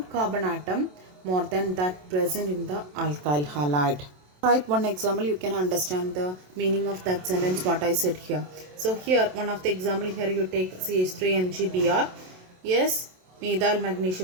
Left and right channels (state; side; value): late; left; 27 ms